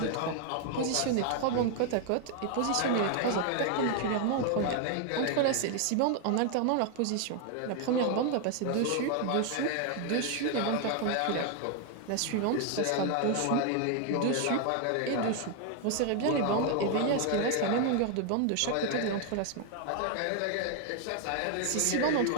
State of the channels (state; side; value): different; both; correlation 0.00